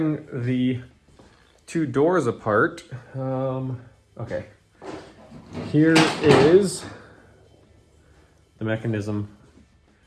the two doors apart, okay, here is the mechanism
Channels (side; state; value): both; identical; correlation 1.00